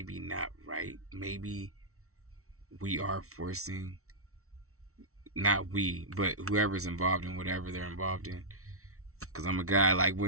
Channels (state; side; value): late; left; 0.63 ms